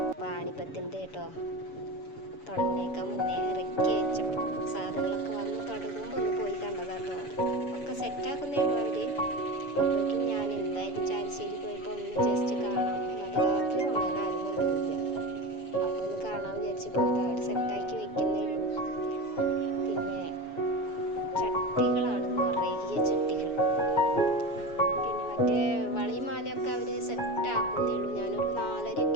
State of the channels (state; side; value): late; right; 7.0 ms